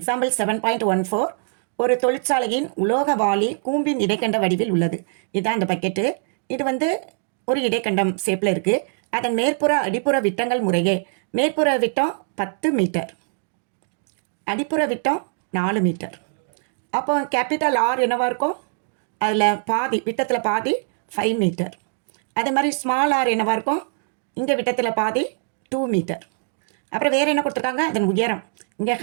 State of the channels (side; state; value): left; silent; 64 dB below the other